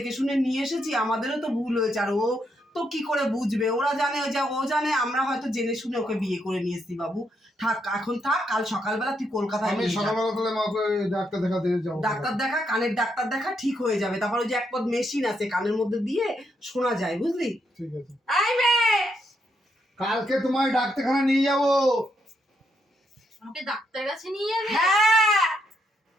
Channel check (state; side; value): normal; both; correlation 0.78